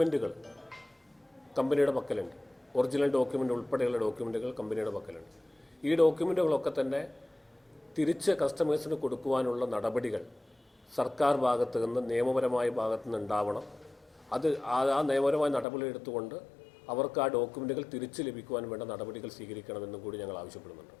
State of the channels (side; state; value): right; drops out; at 15.7 s